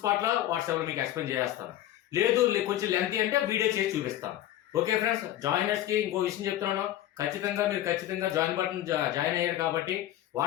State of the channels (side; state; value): right; quieter; 13.2 dB